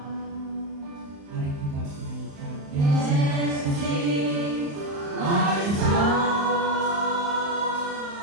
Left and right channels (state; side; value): late; left; 35 ms